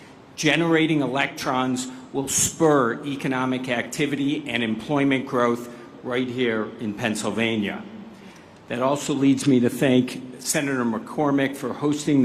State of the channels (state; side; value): identical; both; correlation 1.00